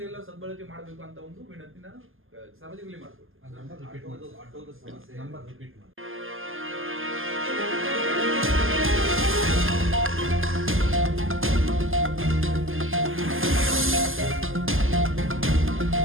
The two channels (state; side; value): late; left; 0.59 ms